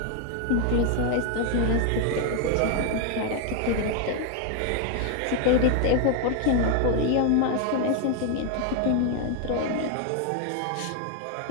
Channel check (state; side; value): different; both; correlation 0.01